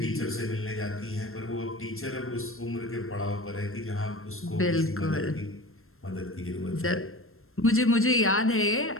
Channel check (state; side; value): late; right; 0.62 ms